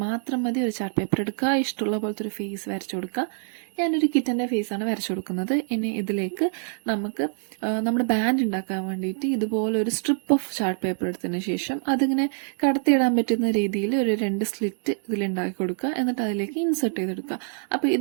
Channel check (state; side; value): silent; left; digital silence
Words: മാത്രം മതി. ഒരു ചാർട്ട് പേപ്പർ എടുക്കുക, ഇഷ്ടമുള്ള പോലത്തെ ഒരു ഫേസ് വരച്ചു കൊടുക്കുക. ഞാനൊരു കിറ്റൻ്റെ ഫേസാണ് വരച്ചു കൊടുക്കുന്നത്. ഇനി ഇതിലേക്ക് നമുക്ക് നമ്മുടെ ബാൻഡ് ഉണ്ടാക്കാൻ വേണ്ടിയിട്ട് ഇതുപോലെ ഒരു സ്ട്രിപ്പ് ഓഫ് ചാർട്ട് പേപ്പർ എടുത്തതിന് ശേഷം അതിങ്ങനെ കടത്തിയിടാൻ പറ്റുന്ന രീതിയിൽ ഒരു 2 സ്ലിറ്റ് ഇതിലുണ്ടാക്കി കൊടുക്കുക. എന്നിട്ട് അതിലേക്ക് ഇൻസെർട്ട് ചെയ്തെടുക്കുക. അപ്പോൾ